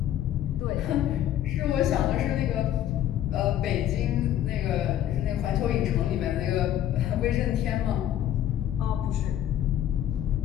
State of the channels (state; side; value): quieter; right; 11.6 dB